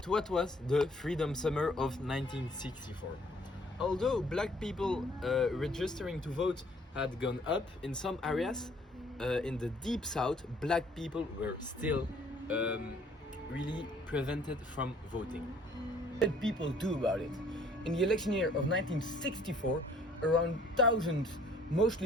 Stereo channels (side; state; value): both; normal; correlation 0.59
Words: What was the Freedom Summer of 1964? Although black people registering to vote had gone up in some areas, in the deep south, black people were still really prevented from voting. What did people do about it? In the election year of 1964, around 1,000